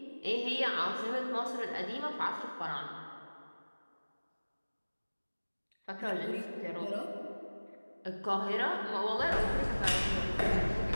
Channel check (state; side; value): inverted; both; correlation -1.00